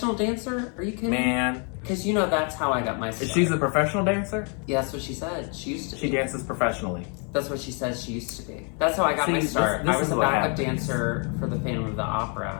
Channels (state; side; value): quieter; right; 38.2 dB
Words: dancer? Are you kidding? Man. Because you know that's how I got my start. She's a professional dancer? Yeah, that's what she said. She used to be. She dances professionally. That's what she says she used to be. That's how I got my start. I was a backup dancer for the Phantom of the